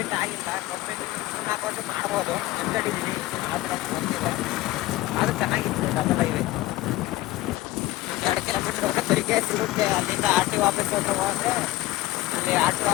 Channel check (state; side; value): quieter; right; 17.1 dB